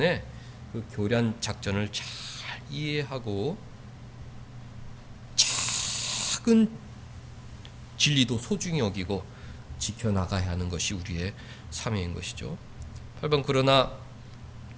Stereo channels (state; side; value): identical; both; correlation 1.00